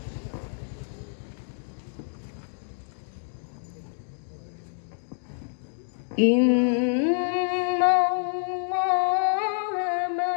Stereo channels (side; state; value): right; silent; digital silence